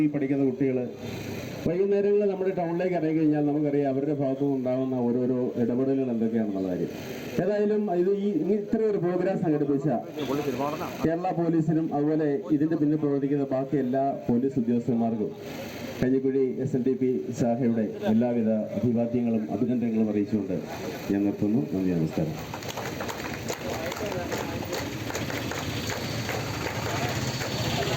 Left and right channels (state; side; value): identical; both; correlation 1.00